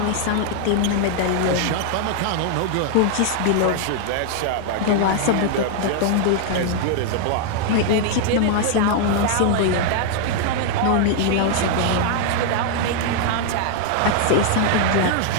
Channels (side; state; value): both; different; correlation 0.00